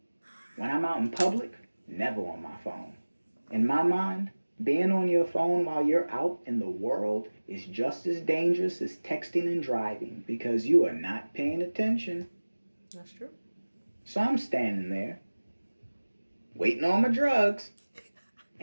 When I'm out in public, never on my phone. In my mind, being on your phone while you're out in the world is just as dangerous as texting and driving because you are not paying attention. That's true. So I'm standing there, waiting on my drugs,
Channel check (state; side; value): inverted; both; correlation -1.00